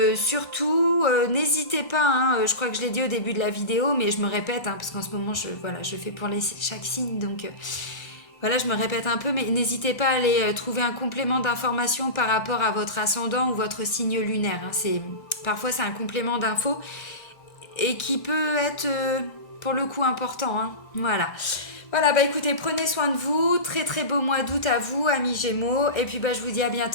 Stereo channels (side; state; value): right; late; 1.4 ms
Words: surtout, n'hésitez pas, hein, je crois que je l'ai dit au début de la vidéo, mais je me répète, hein, parce qu'en ce moment, voilà, je fais pour chaque signe. Donc, voilà, je me répète un peu, mais n'hésitez pas à aller trouver un complément d'information par rapport à votre ascendant ou votre signe lunaire, hein. Parfois, c'est un complément d'info et qui peut être pour le coup important, hein. Voilà. Voilà, bah écoutez, prenez soin de vous. Très très beau mois d'août à vous, amis Gémeaux. Et puis bah, je vous dis à